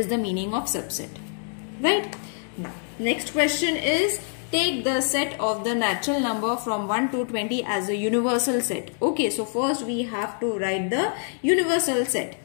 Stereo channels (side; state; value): right; silent; 61 dB below the other